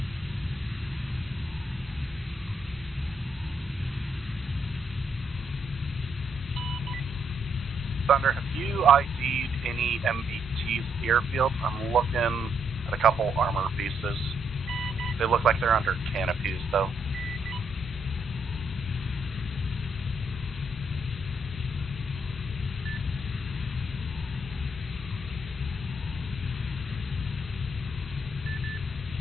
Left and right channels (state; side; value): normal; both; correlation 0.75